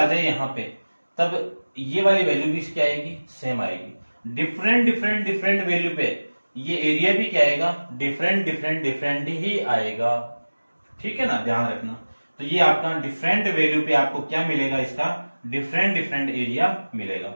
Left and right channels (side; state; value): both; inverted; correlation -1.00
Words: जाए यहां पे तब ये वाली वैल्यू भी क्या आएगी, सेम आएगी। डिफरेंट डिफरेंट डिफरेंट वैल्यू पे ये एरिया भी क्या आएगा, डिफरेंट डिफरेंट डिफरेंट ही आएगा, ठीक है ना, ध्यान रखना। तो ये आपका डिफरेंट वैल्यू पे आपको क्या मिलेगा, इसका डिफरेंट डिफरेंट एरिया मिलेगा।